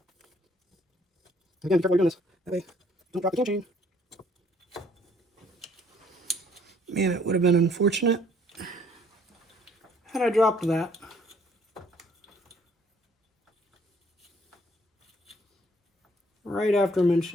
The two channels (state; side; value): normal; both; correlation 0.62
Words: Again, be careful while you're doing this. That way, don't drop the cam chain. Man, it would have been unfortunate had I dropped that. Right after